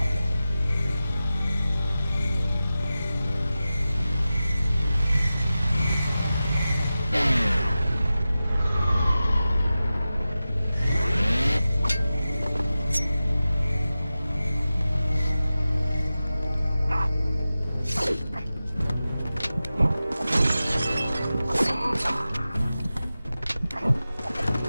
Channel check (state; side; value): inverted; both; correlation -0.94